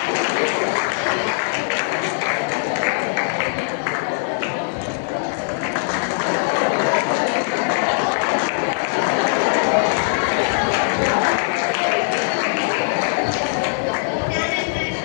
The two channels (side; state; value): right; silent; 65 dB below the other